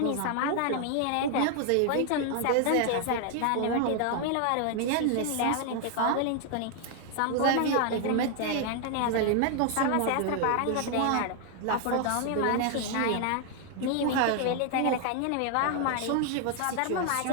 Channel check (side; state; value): both; different; correlation 0.00